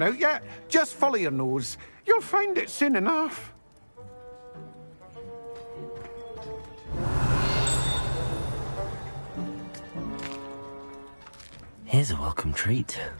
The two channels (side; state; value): both; inverted; correlation -1.00